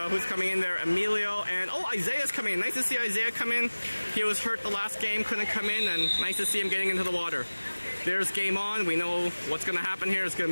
who's coming in there? Emilio and Isaiah's coming in. Nice to see Isaiah come in. He was hurt the last game, couldn't come in, and nice to see him getting into the water. There's game on. We know what's going to happen here. It's going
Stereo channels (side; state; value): both; inverted; correlation -1.00